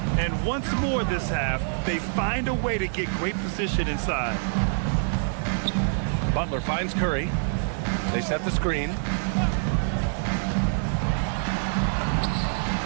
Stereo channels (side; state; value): left; silent; 61 dB below the other